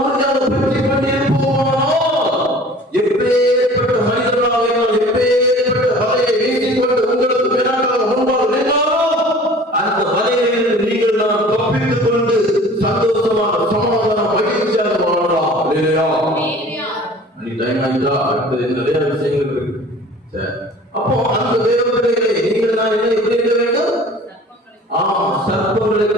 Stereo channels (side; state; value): both; normal; correlation 0.46